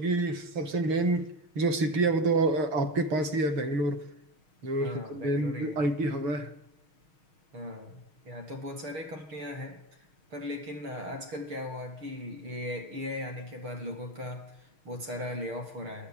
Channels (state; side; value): late; left; 6.4 ms